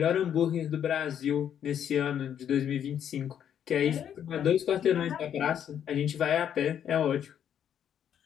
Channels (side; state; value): right; quieter; 9.3 dB